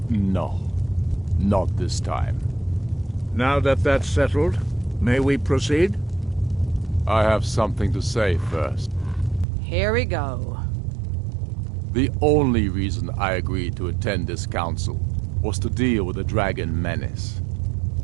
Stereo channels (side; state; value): left; drops out; at 9.5 s